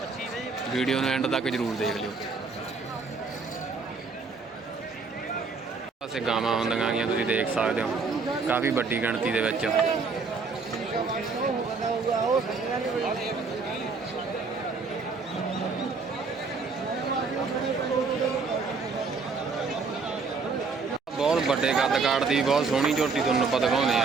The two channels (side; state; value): left; quieter; 4.5 dB